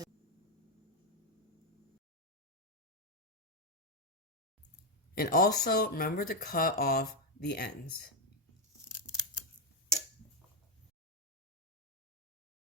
And also remember to cut off the ends.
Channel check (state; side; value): normal; both; correlation 0.03